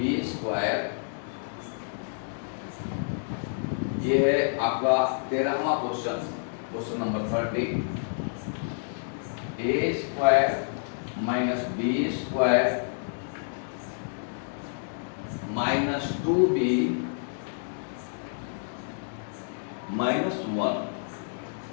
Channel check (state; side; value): silent; right; digital silence